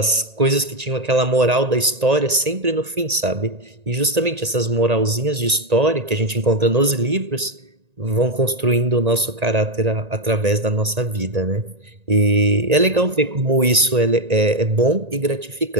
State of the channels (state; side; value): late; left; 1.9 ms